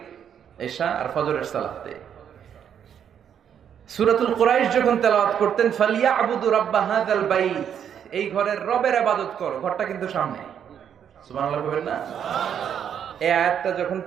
এশা আর ফজরের সালাতে। সূরাতুল কুরাইশ যখন তেলাওয়াত করতেন, ফালিয়াবুদু রাব্বা হাযাল বাইত, এই ঘরের রবের ইবাদত করো, ঘরটা কিন্তু সামনে। সুবহানাল্লাহ বলেন না? এই আয়াতটা যখন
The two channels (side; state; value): left; quieter; 8.6 dB